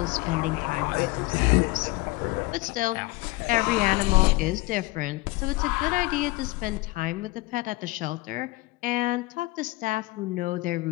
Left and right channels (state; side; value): quieter; right; 21.3 dB